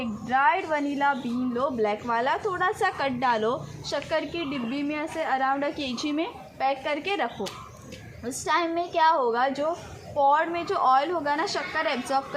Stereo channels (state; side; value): identical; both; correlation 1.00